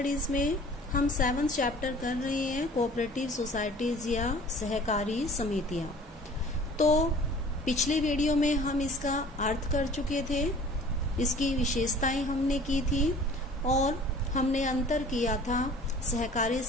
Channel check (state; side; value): normal; both; correlation 0.48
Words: में हम 7th chapter कर रहे हैं कोऑपरेटिव सोसाइटीज या सहकारी समितियां। तो पिछले वीडियो में हम इसका अर्थ कर चुके थे, इसकी विशेषताएं हमने की थी और हमने अंतर किया था सहकारी